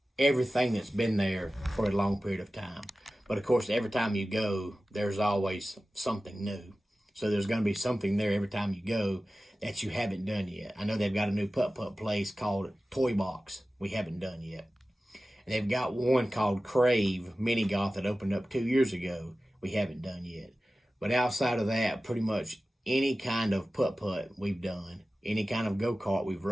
everything that's been there for a long period of time. But of course, every time you go, there's always something new. So there's going to be something there every time you go that you haven't done yet. I know they've got a new putt-putt place called Toy Box we haven't done yet. And they've got one called Crave Mini Golf that opened up 2 years ago we haven't done yet. But outside of that, pretty much any kind of putt-putt we've done, any kind of go-kart we've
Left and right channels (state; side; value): normal; both; correlation 0.95